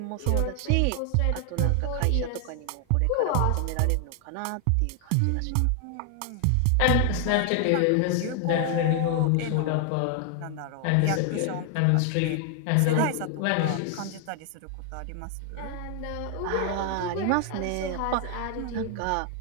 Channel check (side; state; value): both; different; correlation 0.00